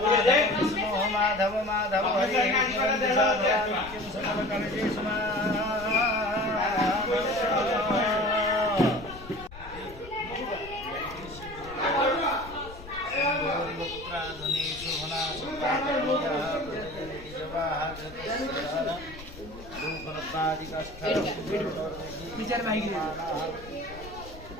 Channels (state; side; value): noise; left; rumble, 16 dB below the sound